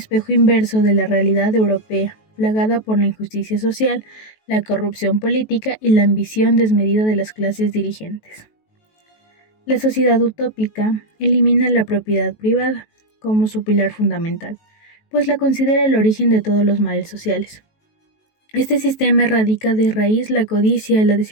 inverso de la realidad europea, plagada por la injusticia social, la corrupción política y la ambición desmedida de las clases dirigentes. La sociedad utópica elimina la propiedad privada como su pilar fundamental, pues la considera el origen de todos los males sociales. Este sistema erradica de raíz la codicia, la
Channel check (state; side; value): late; right; 19 ms